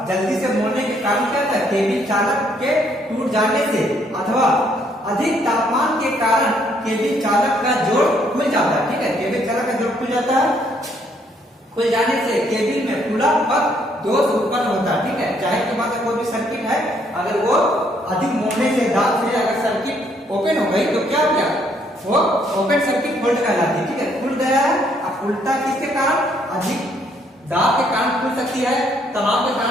जल्दी से मोड़ने के कारण क्या था केबिल चालक के टूट जाने से अथवा अधिक तापमान के कारण केबिल चालक का जोड़ खुल जाता है, ठीक है, केबिल चालक का जोड़ खुल जाता है, खुल जाने से केबिल में खुला पथ दोष उत्पन्न होता है, ठीक है। जाहिर की बात है कोई भी सर्किट है अगर वो अधिक मोड़ने से दाब से अगर सर्किट ओपन हो गई तो क्या हो गया वो ओपन सर्किट फॉल्ट कहलाती है, ठीक है। खुल गया है, अब उल्टा किसके कारण अधिक दाब के कारण खुल सकती है, तनाव के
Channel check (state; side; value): normal; both; correlation 0.68